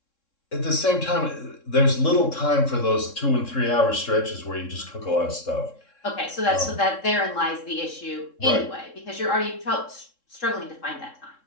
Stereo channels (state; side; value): late; right; 3.7 ms